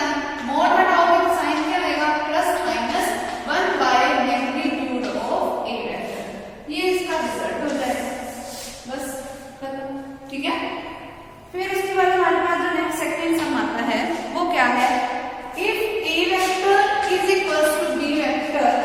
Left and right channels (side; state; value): both; identical; correlation 1.00